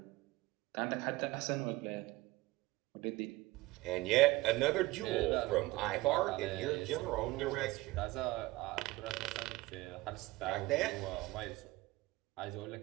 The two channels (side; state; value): left; quieter; 19.9 dB